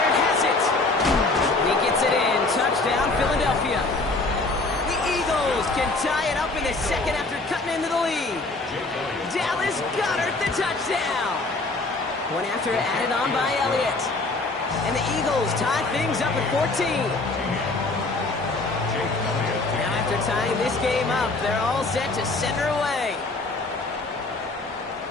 has it. He gets it in. Touchdown, Philadelphia. The Eagles can tie it up in the second after cutting into the lead. Dallas Goedert, the touchdown. One after added on by Elliott. And the Eagles tie things up at 14. After tying this game up, they're all set to center away.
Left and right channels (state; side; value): quieter; right; 3.3 dB